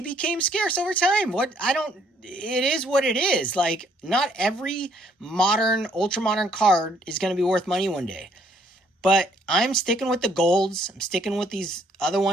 became scarce over time. It is what it is. Like, not every modern, ultra modern card is going to be worth money one day. But I'm sticking with the golds. I'm sticking with these other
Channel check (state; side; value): normal; both; correlation 0.66